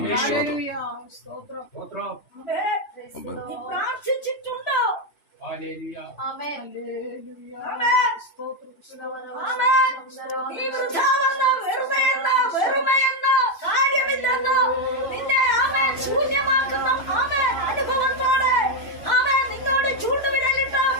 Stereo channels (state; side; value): late; right; 2.9 ms